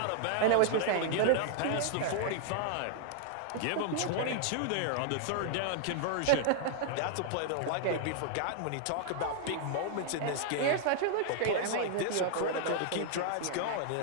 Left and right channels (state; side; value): different; both; correlation -0.01